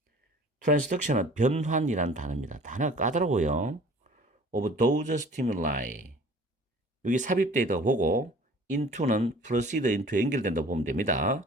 변환이라는 단어입니다. 단어가 까다로워요. Of those stimuli. 여기 삽입되어 있다고 보고 into는 proceed into에 연결된다고 보면 됩니다.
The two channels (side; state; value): both; normal; correlation 0.48